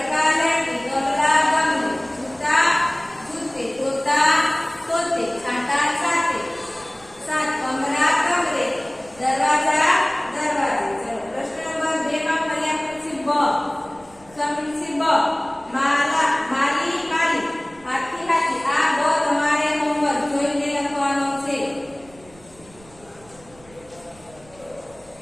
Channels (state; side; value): noise; right; rumble, 26 dB below the sound